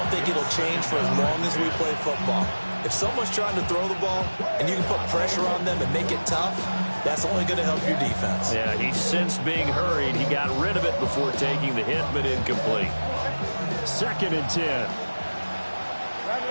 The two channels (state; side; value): inverted; both; correlation -1.00